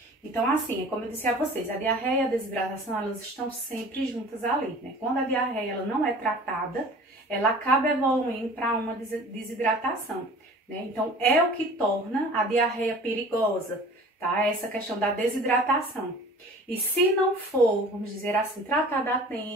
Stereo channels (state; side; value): normal; both; correlation 0.44